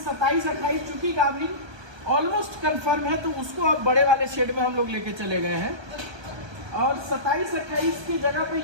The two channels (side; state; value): left; late; 1.2 ms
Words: चूकी गाभिन ऑलमोस्ट कंफर्म है, तो उसको अब बड़े वाले शेड में हम लोग लेके चले गए हैं। और 27-28 की जगह पे